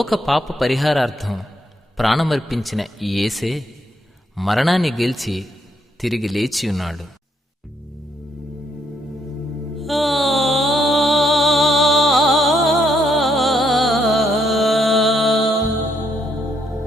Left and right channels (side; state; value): both; normal; correlation 0.74